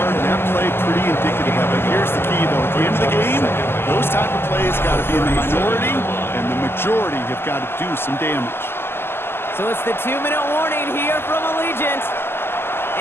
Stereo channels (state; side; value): late; right; 0.11 ms